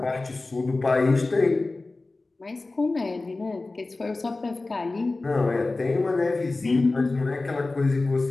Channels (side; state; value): right; quieter; 3.3 dB